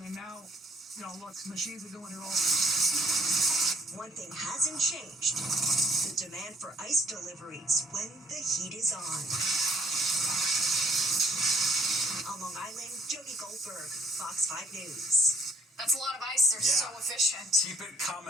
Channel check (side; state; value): both; normal; correlation 0.62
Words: And now, look, machines are doing it all. one thing hasn't changed: the demand for ice deliveries when the heat is on. On Long Island, Jody Goldberg, Fox 5 News. That's a lot of ice. They're so efficient. Keep it